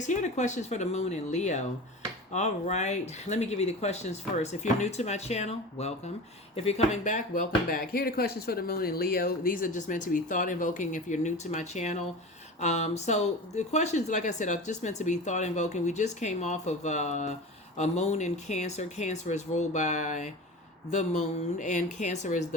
Here are the questions for the moon in Leo. All right, let me give you the questions first. If you're new to my channel, welcome. If you're coming back, welcome back. Here are the questions for the moon in Leo. These are just meant to be thought invoking if you're new to my channel. So the questions, like I said, are just meant to be thought invoking. We just came off of a moon in Cancer. Cancer is ruled by the moon, and Cancer is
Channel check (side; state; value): both; normal; correlation 0.32